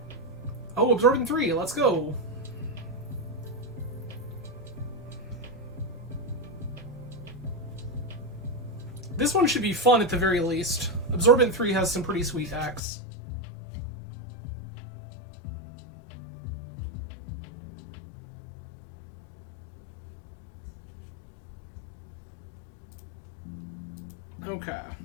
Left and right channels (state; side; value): drops out; right; at 12.8 s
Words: Oh, Absorbing 3, let's go. This one should be fun at the very least. Absorbent 3 has some pretty sweet decks. Okay.